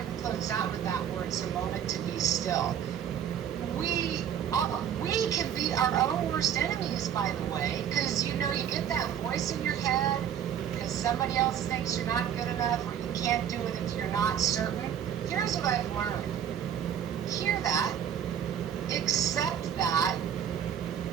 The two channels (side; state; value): left; quieter; 9.3 dB